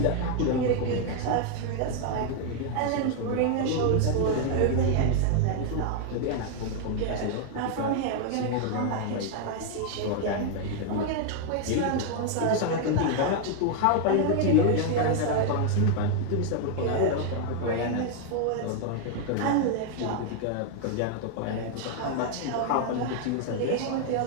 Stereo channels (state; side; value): different; both; correlation 0.00